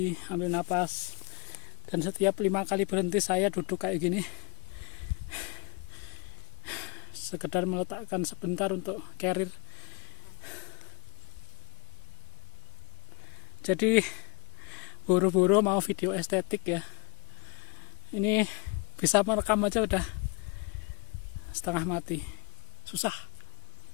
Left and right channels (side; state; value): right; quieter; 30.1 dB